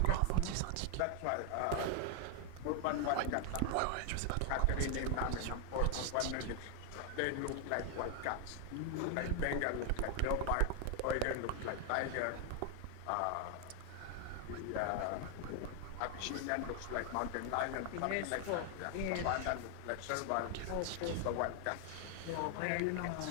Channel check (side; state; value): both; different; correlation 0.00